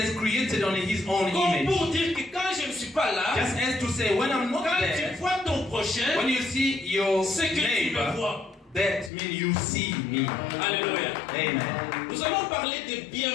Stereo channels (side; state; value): right; drops out; at 9.1 s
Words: created on his own Comme image. pour dire que quand je ne suis pas là, Just as to say, when I'm not quand there, tu vois ton prochain, when you see your c'est que tu le neighbor, vois. That means you see me. Alléluia. Amen. Nous allons parler des